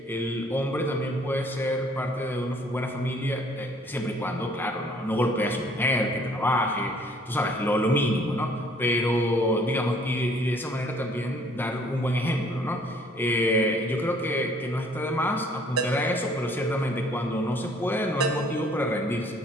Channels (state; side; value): normal; both; correlation 0.59